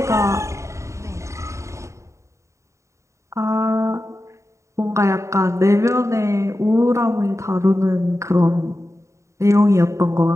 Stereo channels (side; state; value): left; late; 0.14 ms